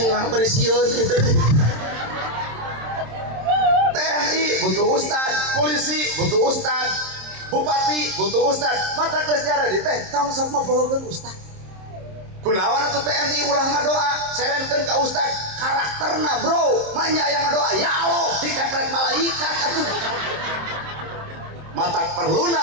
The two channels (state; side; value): late; left; 27 ms